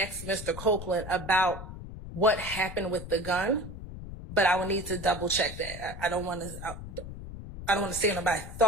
Mr. Copeland about what happened with the gun, but I would need to double check that. I don't want to say it, but I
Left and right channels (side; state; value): left; noise; rumble, 11 dB below the sound